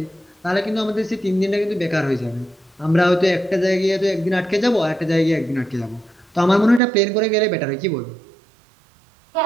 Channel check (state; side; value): drops out; left; at 6.8 s